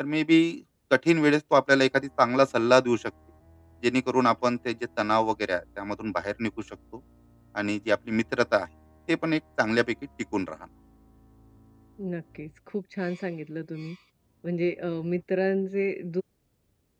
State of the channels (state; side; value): identical; both; correlation 1.00